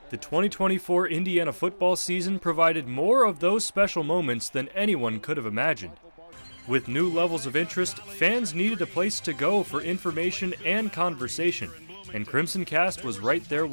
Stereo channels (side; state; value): both; inverted; correlation -1.00